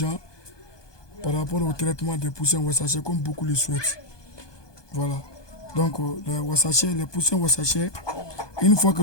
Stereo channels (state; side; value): late; right; 1.2 ms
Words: par rapport au traitement des poussins Wassacher comme beaucoup le souhaitent. Voilà. Donc, les poussins Wassacher, une fois que